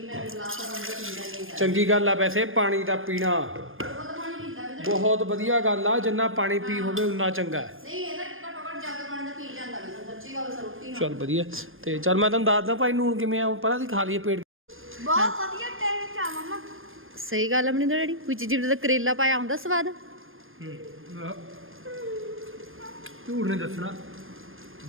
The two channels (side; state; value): left; late; 0.59 ms